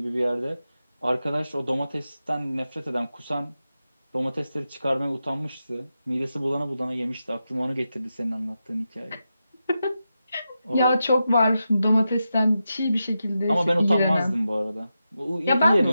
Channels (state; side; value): inverted; both; correlation -0.89